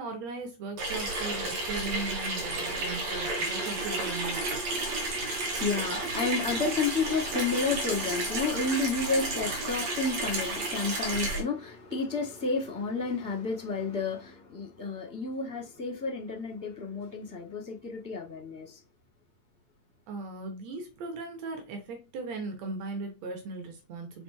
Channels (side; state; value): left; late; 8.6 ms